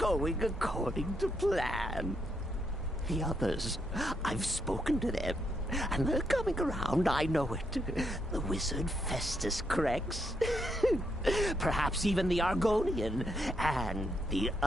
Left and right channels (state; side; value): normal; both; correlation 0.78